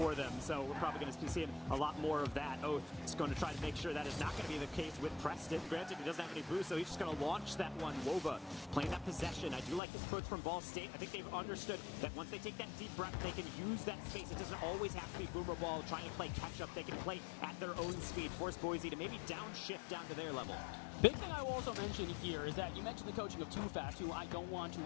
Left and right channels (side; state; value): right; drops out; at 9.8 s